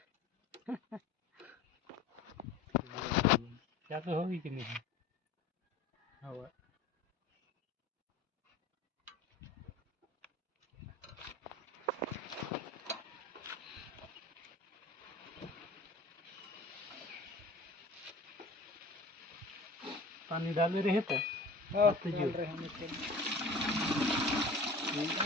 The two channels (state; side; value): quieter; right; 3.1 dB